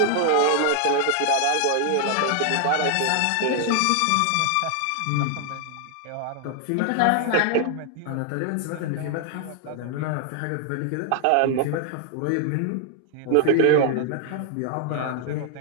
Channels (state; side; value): different; both; correlation 0.00